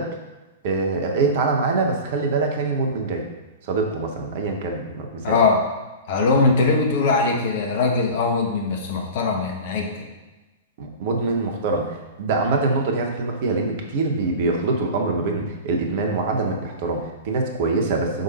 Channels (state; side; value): inverted; both; correlation -0.33